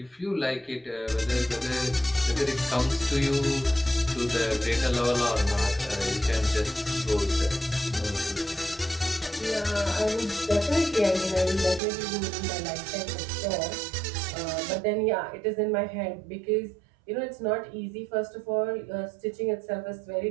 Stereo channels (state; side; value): drops out; left; at 11.8 s